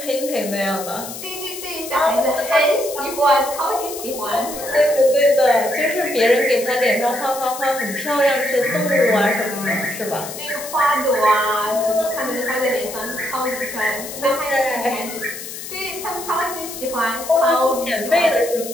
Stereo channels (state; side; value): noise; left; hiss, 10 dB below the sound